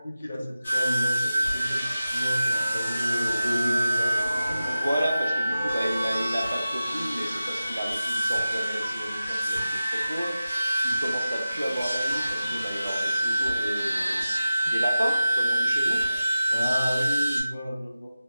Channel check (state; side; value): inverted; both; correlation -0.92